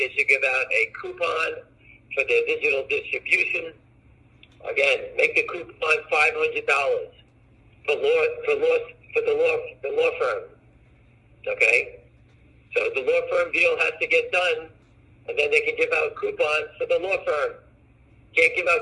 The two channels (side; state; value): both; identical; correlation 1.00